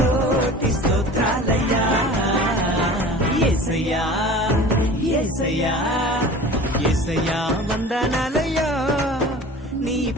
స్తోత్రాలయ్యా. యేసయ్యా యేసయ్యా యేసయ్యా వందనాలయ్యా, నీ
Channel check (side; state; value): both; normal; correlation 0.40